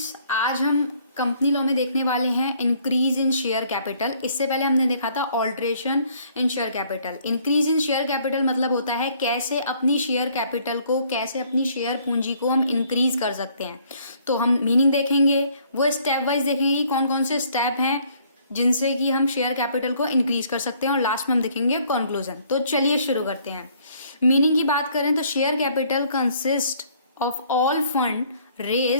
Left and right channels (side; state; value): both; inverted; correlation -0.62